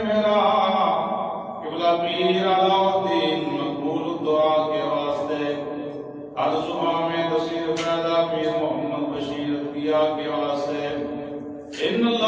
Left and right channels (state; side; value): identical; both; correlation 1.00